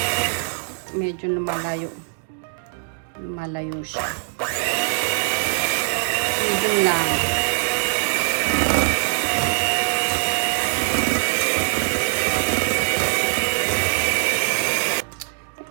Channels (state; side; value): silent; left; 59 dB below the other